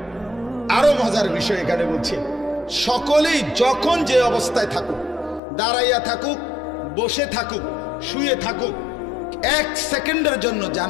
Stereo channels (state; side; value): drops out; right; at 5.4 s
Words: আরো মজার বিষয় এখানে বলছে, সকলেই যখন যে অবস্থায় থাকুক, দাঁড়াইয়া থাকুক, বসে থাকুক, শুয়ে থাকুক, 1 সেকেন্ডের জন্য